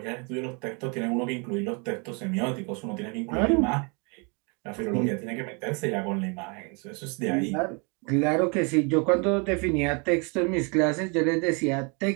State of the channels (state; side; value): quieter; left; 33.5 dB